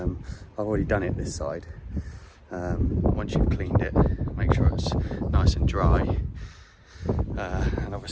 already done it this side. Once you've cleaned it, make sure it's nice and dry, and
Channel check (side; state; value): both; identical; correlation 1.00